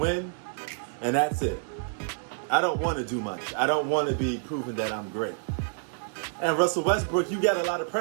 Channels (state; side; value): silent; left; 59 dB below the other